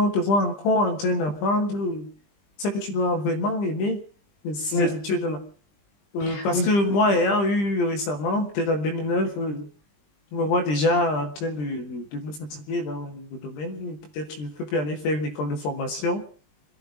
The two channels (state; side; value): late; right; 20 ms